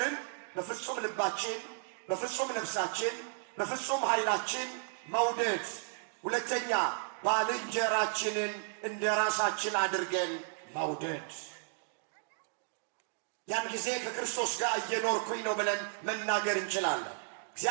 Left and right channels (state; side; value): silent; left; digital silence